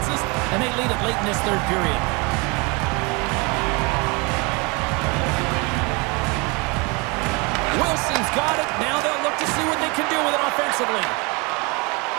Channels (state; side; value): quieter; left; 28.8 dB